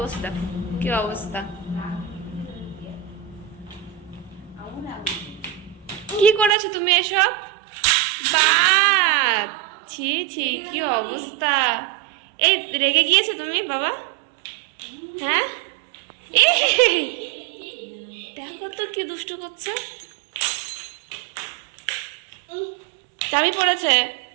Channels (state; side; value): drops out; left; at 6.5 s